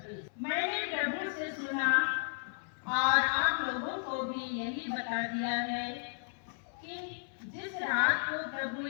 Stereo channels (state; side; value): silent; right; 55 dB below the other